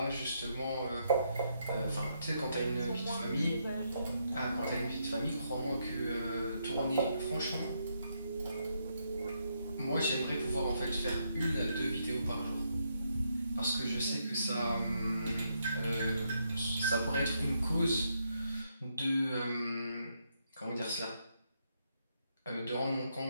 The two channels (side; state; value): both; inverted; correlation -0.78